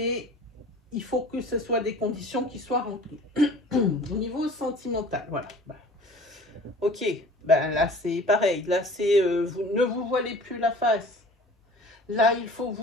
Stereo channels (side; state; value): both; normal; correlation 0.45